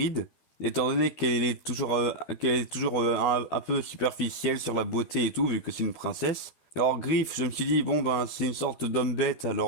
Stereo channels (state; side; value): late; right; 13 ms